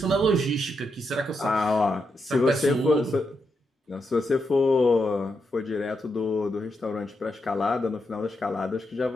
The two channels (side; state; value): both; normal; correlation 0.83